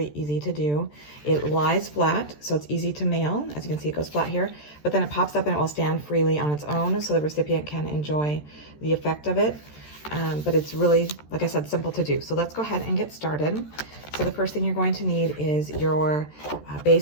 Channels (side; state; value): right; late; 13 ms